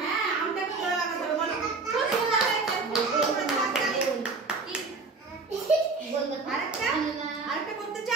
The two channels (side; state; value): left; quieter; 4.1 dB